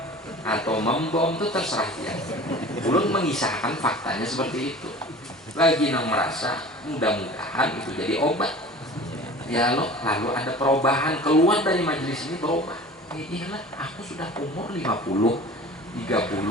atau membom itu terserah dia. Ulun mengisahkan faktanya seperti itu. Lagi nang merasa mudah-mudahan itu jadi obat. Ya lo, lalu ada perubahan keluar dari majelis ini berubah. Iyalah, aku sudah umur 50, 30,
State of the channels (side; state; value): both; normal; correlation 0.41